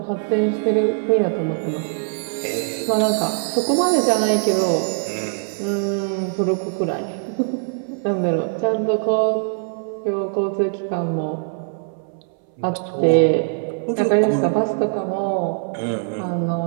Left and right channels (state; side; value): silent; left; 62 dB below the other